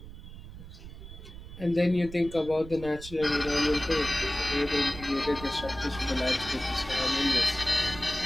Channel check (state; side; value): noise; right; rumble, 14 dB below the sound